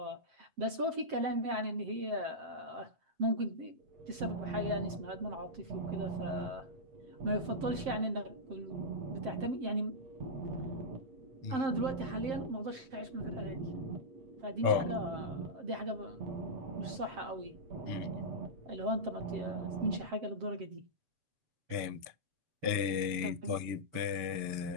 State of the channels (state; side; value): late; left; 7.6 ms